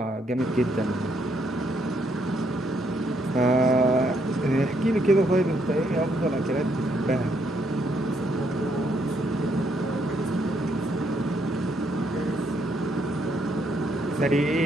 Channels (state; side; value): normal; both; correlation 0.73